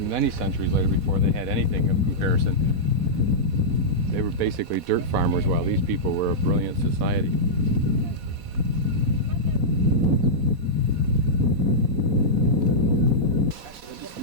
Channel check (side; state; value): left; late; 4.1 ms